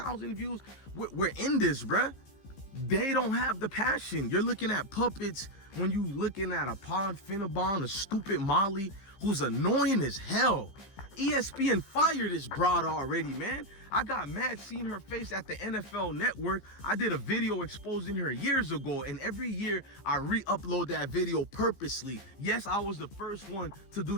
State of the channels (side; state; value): right; late; 15 ms